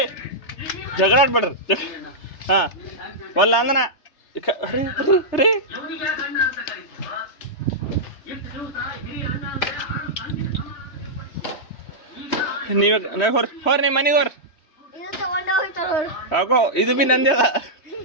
ಜಗಳ ಆಡ್ಬೇಡ್ರಿ. ಹಾ ಒಲ್ಲ ಅಂದನ ರೀ ನೀವ ಹೋರ್ ನಿಮ್ಮ ಮನೆಗೆ ಹೋರ್. ಹಾಕೋ ಇದು ಬಿ ನಂದೇ ಅದ.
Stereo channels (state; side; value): late; right; 3.3 ms